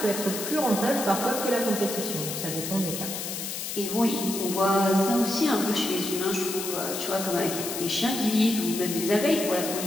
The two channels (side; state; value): left; noise; hiss, 5 dB below the sound